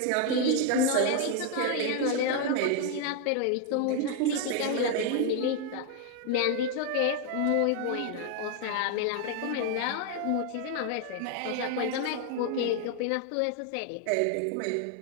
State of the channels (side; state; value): both; different; correlation 0.00